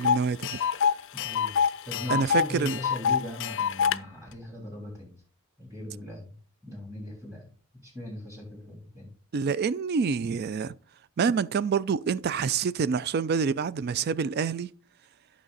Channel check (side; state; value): both; normal; correlation -0.04